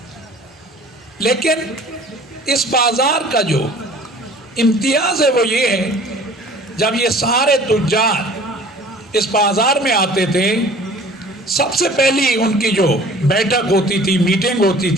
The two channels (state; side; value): normal; both; correlation 0.48